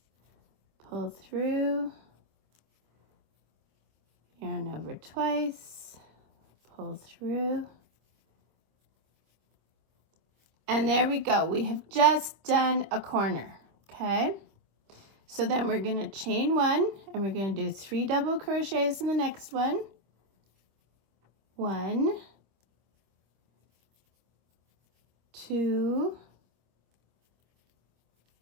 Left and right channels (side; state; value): left; late; 26 ms